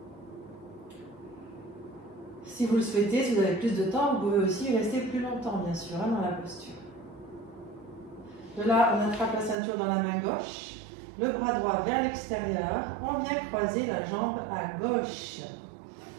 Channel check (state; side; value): drops out; left; at 9.6 s